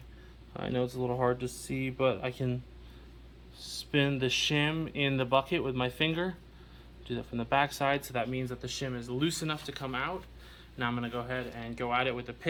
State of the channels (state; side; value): identical; both; correlation 1.00